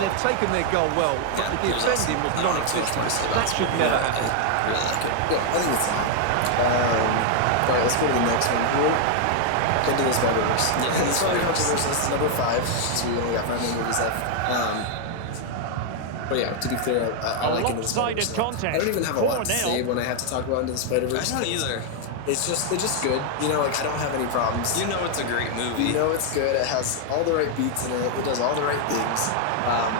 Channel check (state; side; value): different; both; correlation 0.00